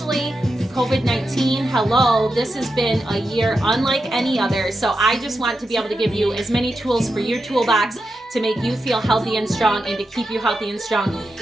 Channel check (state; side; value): normal; both; correlation 0.88